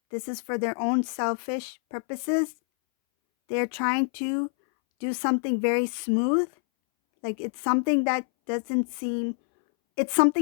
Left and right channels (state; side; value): silent; right; 61 dB below the other